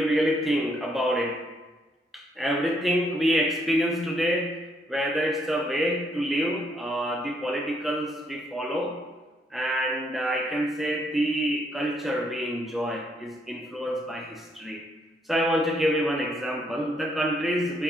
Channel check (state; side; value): normal; both; correlation 0.72